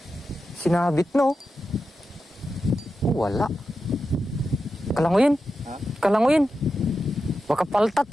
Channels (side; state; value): both; normal; correlation 0.90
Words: Sinabit no? Wala. Kalanguyin. Baka paltat,